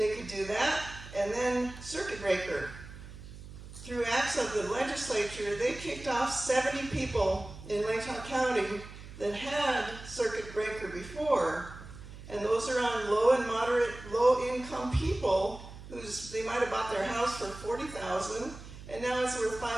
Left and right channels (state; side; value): noise; right; hum, 14 dB below the sound